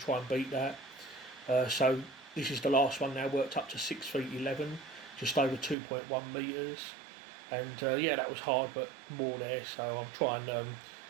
and beat that. So this is the last one now, worked up to 6 feet 11, just over 2.1 metres, and yeah, that was hard but more there, so I'll try and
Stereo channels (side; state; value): left; drops out; at 5.8 s